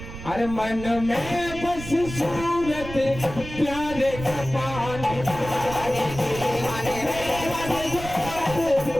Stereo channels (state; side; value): noise; right; rumble, 11 dB below the sound